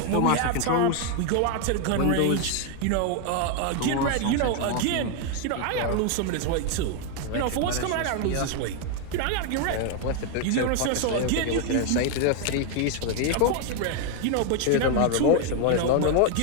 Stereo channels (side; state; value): both; different; correlation 0.01